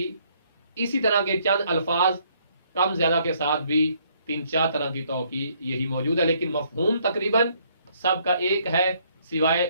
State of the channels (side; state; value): both; inverted; correlation -0.67